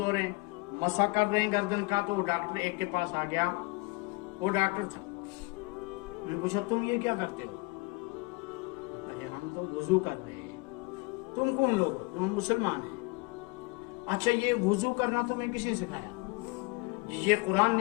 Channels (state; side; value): quieter; right; 27.0 dB